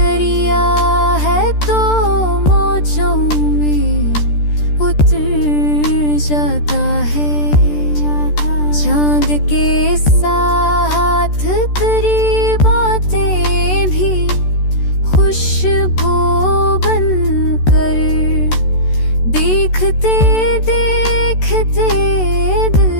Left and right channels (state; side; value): late; right; 13 ms